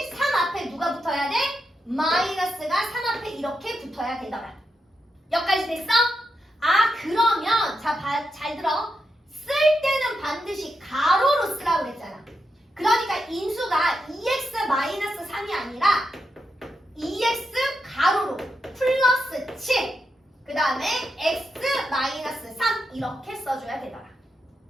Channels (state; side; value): normal; both; correlation 0.85